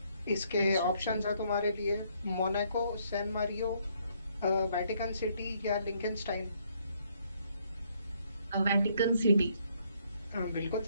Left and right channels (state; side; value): inverted; both; correlation -0.69